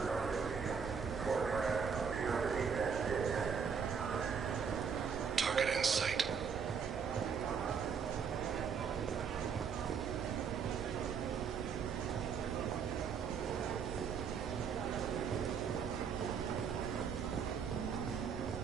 Target in sight.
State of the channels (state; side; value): quieter; left; 6.5 dB